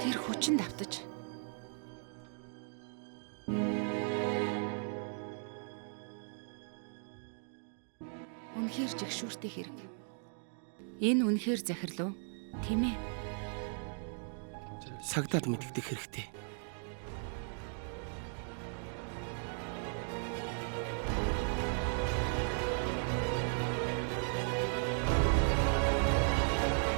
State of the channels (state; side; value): silent; left; 53 dB below the other